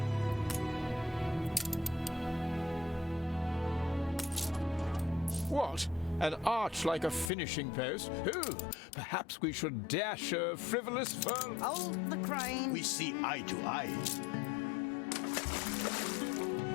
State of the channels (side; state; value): right; drops out; at 7.3 s